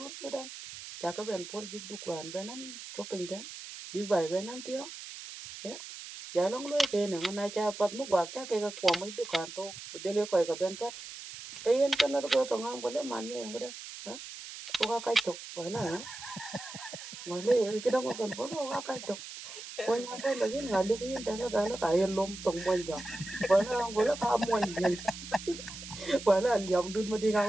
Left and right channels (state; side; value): noise; right; hiss, 12 dB below the sound